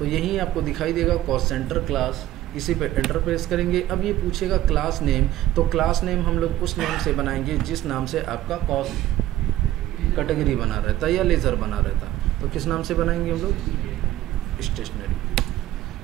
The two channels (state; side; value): quieter; left; 14.3 dB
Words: यहीं आपको दिखाई देगा कॉस्ट सेंटर क्लास, इसी पे एंटर प्रेस करेंगे। अब ये पूछेगा क्लास नेम, तो क्लास नेम हम लोग उस नेम से बनाएंगे जिस नाम से आपका कॉस्ट कैटेगरी बना रहता है या लेज़र बना रहता है। तो किस नाम से बनाएंगे हम लोग?